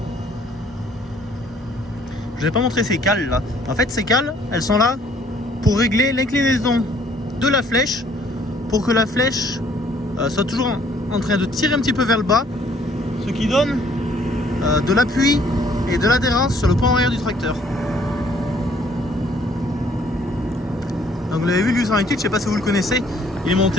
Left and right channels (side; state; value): both; normal; correlation 0.61